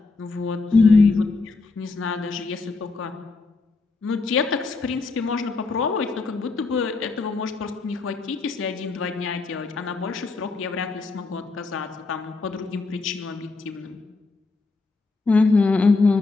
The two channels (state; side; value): quieter; right; 3.9 dB